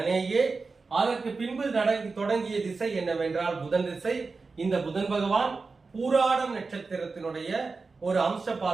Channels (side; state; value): left; quieter; 4.2 dB